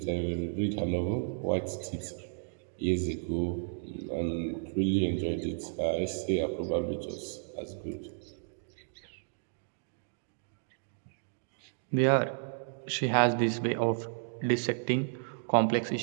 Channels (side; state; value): left; silent; digital silence